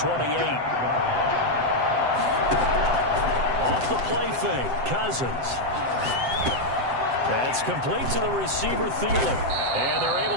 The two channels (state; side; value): late; left; 7.8 ms